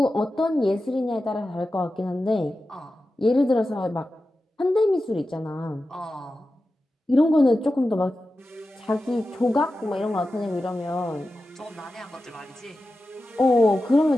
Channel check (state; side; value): normal; both; correlation 0.93